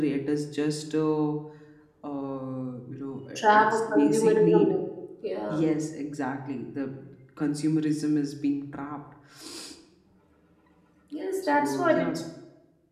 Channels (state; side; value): identical; both; correlation 1.00